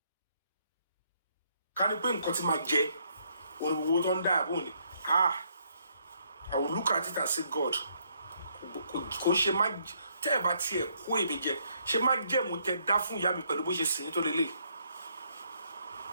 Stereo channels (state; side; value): inverted; both; correlation -0.71